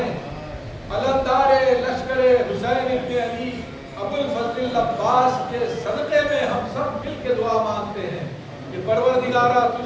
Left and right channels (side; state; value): both; identical; correlation 1.00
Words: علمدار لشکر حسین ابن علی ابو الفضل العباس کے صدقے میں ہم سب مل کے دعا مانگتے ہیں کہ پروردگارا